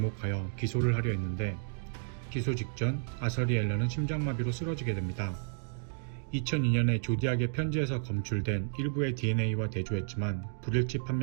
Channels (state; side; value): silent; left; digital silence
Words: 기소를 하려 했는데 기소 직전 아서리 앨런은 심장마비로 쓰러지게 됩니다. 2002년에 조디악의 편지에서 검출된 일부의 DNA와 대조했지만 불일치